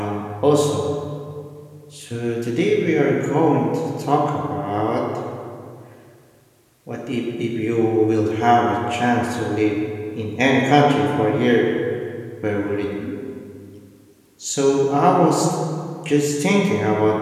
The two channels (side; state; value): both; identical; correlation 1.00